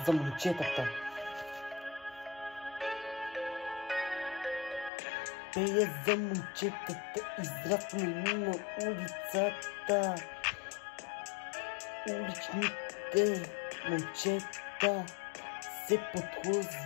за момчетата. Пея за момчетата, израснали на улицата. Уличните момчета се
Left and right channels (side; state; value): right; drops out; at 4.9 s